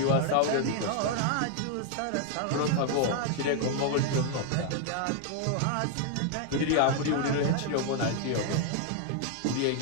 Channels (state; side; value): different; both; correlation 0.00